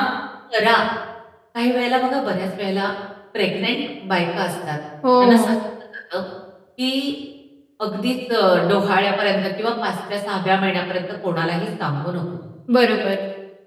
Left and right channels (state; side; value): identical; both; correlation 1.00